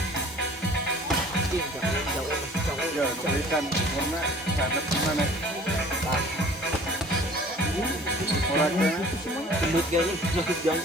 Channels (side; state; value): both; normal; correlation 0.49